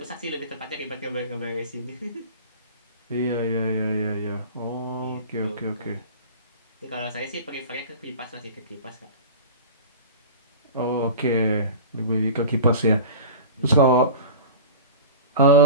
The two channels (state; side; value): inverted; both; correlation -0.35